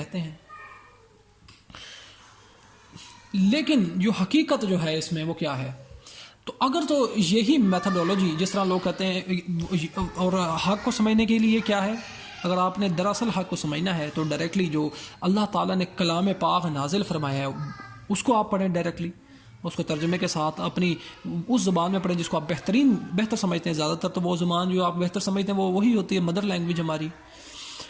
ہیں۔ لیکن جو حقیقت جو ہے اس میں وہ کیا ہے؟ تو اگر تو یہی میتھڈولوجی جس طرح لوگ کہتے ہیں، اور حق کو سمجھنے کے لیے کیا ہے، اگر آپ نے دراصل حق کو سمجھنا ہے تو ڈائریکٹلی جو اللہ تعالیٰ نے کلام پاک نازل فرمایا ہے اس کو آپ پڑھیں، ڈائریکٹلی اس کو ترجمے کے ساتھ اپنی اس زبان میں پڑھیں جس کو آپ بہتر سمجھتے ہیں۔ زیادہ تر تو وہ زبان جو آپ بہتر سمجھتے ہیں وہ وہی ہوتی ہے، مدر لینگویج ہماری،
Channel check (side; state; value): both; identical; correlation 1.00